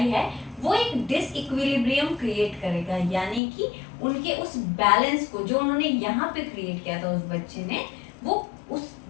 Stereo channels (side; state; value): right; drops out; at 3.4 s